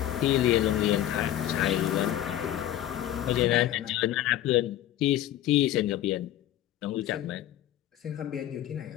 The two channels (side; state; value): right; quieter; 12.9 dB